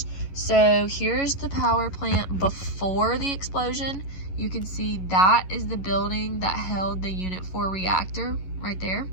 So here's the power plant before the explosion. You can see that is the building that held the Unit 4 reactor right there.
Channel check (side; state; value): right; late; 11 ms